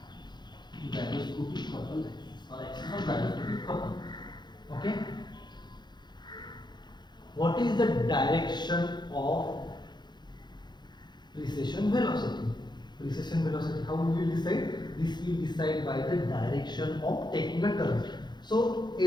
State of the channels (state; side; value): late; right; 0.21 ms